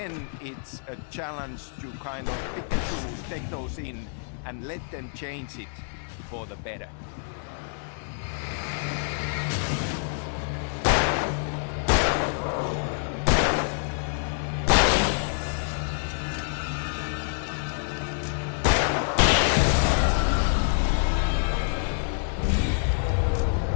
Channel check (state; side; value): silent; right; digital silence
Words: it's a challenge to kind of pick and choose, take those in, and let them change it for the better.